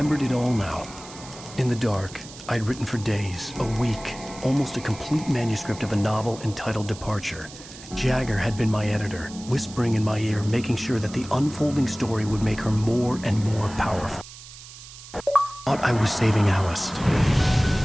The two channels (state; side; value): noise; right; hiss, 16 dB below the sound